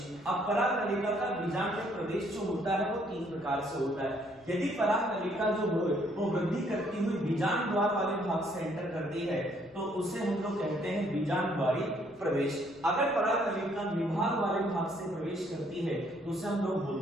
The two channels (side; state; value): left; noise; rumble, 29 dB below the sound